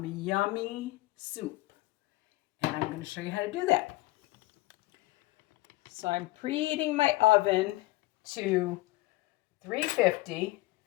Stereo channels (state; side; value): quieter; right; 19.9 dB